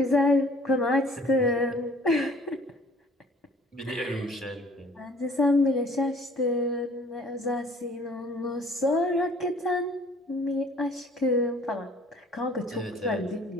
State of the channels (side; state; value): both; normal; correlation 0.54